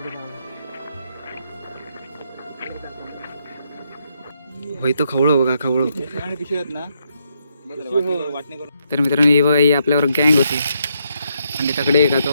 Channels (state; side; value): inverted; both; correlation -0.77